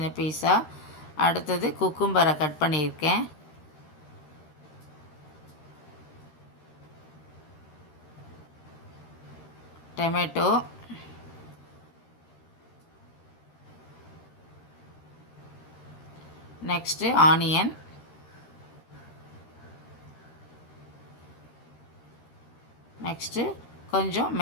பீஸாக. அடுத்தது குக்கும்பரை கட் பண்ணியிருக்கேன். டொமேட்டோ, நெக்ஸ்ட்டு ஆனியன், நெக்ஸ்ட்டு கொஞ்சம்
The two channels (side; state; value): right; late; 13 ms